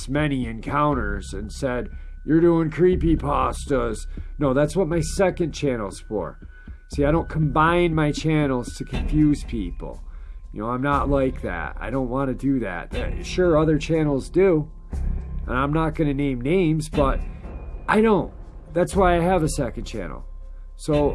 many encounters and said, you're doing creepypastas. No, that's what my second channel's for. See, I don't combine my channels to confuse people. You know, I'm not like that. I don't want to do that. Sure, other channels do. And I'm not going to name names, but I don't. That's why I have a second channel. So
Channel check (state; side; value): identical; both; correlation 1.00